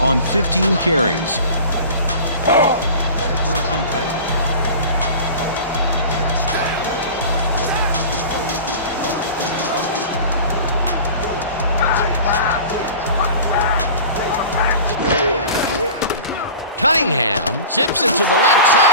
15 carries. First and 10. Cunningham zips it to the left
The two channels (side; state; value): both; inverted; correlation -0.37